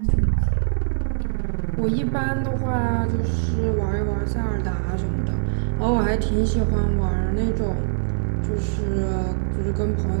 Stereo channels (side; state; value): left; silent; digital silence